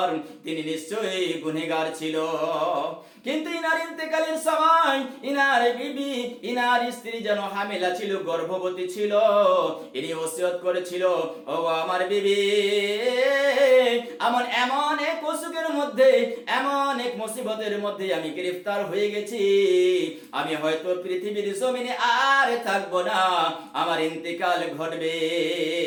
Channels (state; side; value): identical; both; correlation 1.00